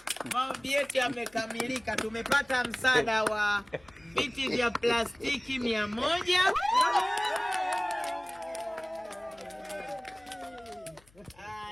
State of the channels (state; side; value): noise; left; hum, 29 dB below the sound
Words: yetu yamekamilika. Tumepata msaada wa viti vya plastiki 100.